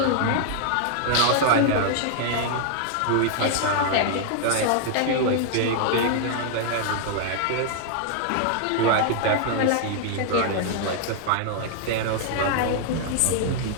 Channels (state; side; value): different; both; correlation 0.00